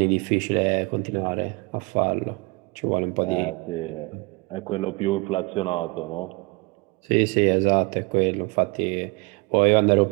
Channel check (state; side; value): quieter; left; 27.0 dB